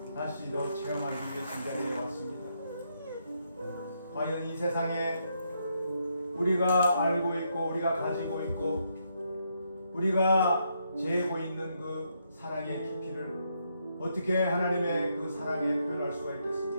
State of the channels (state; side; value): inverted; both; correlation -0.77